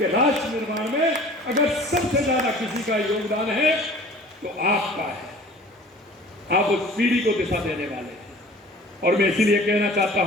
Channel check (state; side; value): normal; both; correlation 0.45